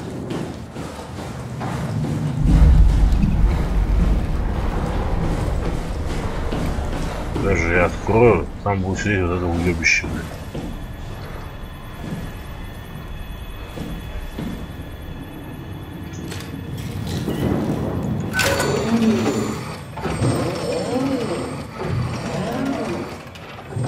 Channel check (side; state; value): both; identical; correlation 1.00